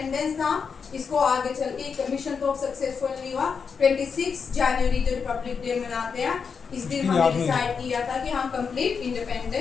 था इसको आगे चल के कमीशन तो सक्सेसफुल नहीं हुआ। 26 जनवरी जो रिपब्लिक डे मनाते हैं, इस दिन हमने डिसाइड किया था कि हम कंप्लीट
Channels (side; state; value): right; quieter; 5.9 dB